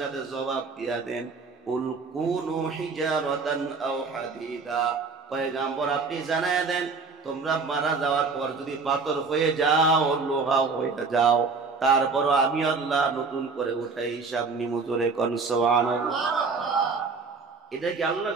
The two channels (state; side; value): quieter; left; 4.5 dB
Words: সাথে জবাব দিয়া দেন, কুল কুনু হিজারাতান আও হাদিদা। পয়গম্বর আপনি জানায় দেন, তোমরা মারা যাওয়ার পর যদি পাথর হয়ে যাও, লোহা হয়ে যাও, তারপরও আমি আল্লাহ নতুন করে উঠাই হিসাব নিমু। জোরে কোন সুবহানাল্লাহ। এটা কি আল্লাহর